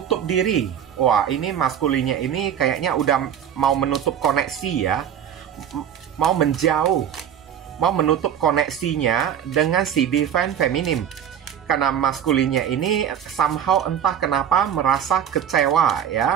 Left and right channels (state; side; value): quieter; left; 9.2 dB